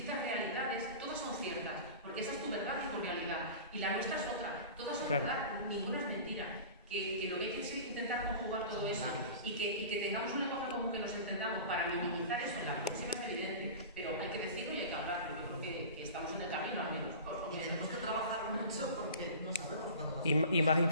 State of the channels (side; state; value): both; inverted; correlation -0.36